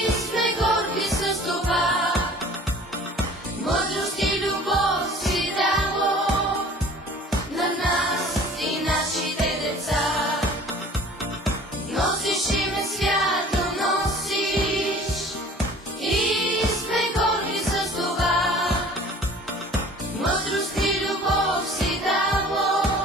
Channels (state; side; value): normal; both; correlation 0.47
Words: сме горди с това. Мъдрост и любов си дало на нас и нашите деца. Носиш име свято, носиш и сме горди с това. Мъдрост и любов си дало